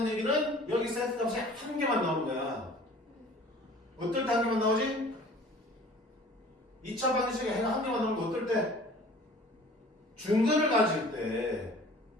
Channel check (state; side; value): normal; both; correlation 0.47